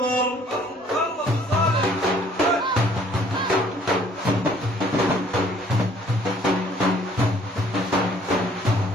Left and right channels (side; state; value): both; normal; correlation 0.59